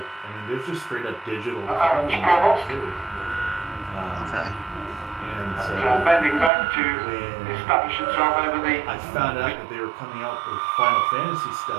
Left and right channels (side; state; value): left; drops out; at 6.5 s